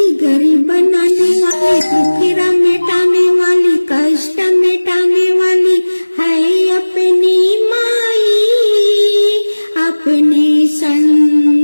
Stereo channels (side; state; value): both; inverted; correlation -1.00